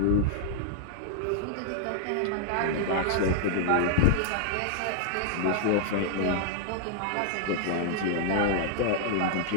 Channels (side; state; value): both; different; correlation -0.01